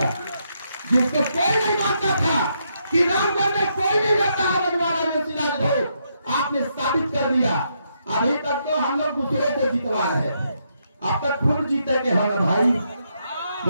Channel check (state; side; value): inverted; both; correlation -0.78